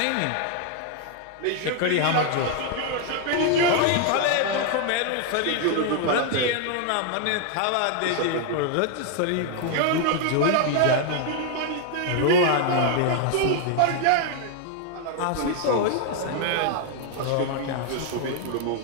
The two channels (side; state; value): both; different; correlation 0.00